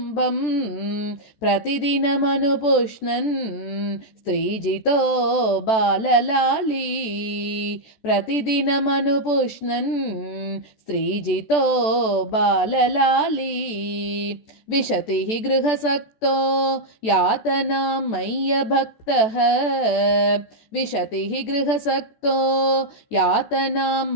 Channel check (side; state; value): right; late; 14 ms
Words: प्रतिदिनमनुपुष्णन् स्त्रीजितो बाललाली प्रतिदिनमनुपुष्णन् स्त्रीजितो बाललाली विशतिः गृहसक्तो यातनां मय्यभक्तः विशतिः गृहसक्तो यातनां